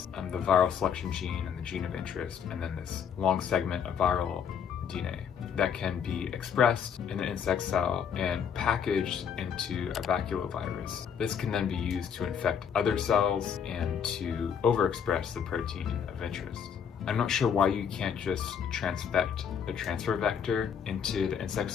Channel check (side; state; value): right; quieter; 7.5 dB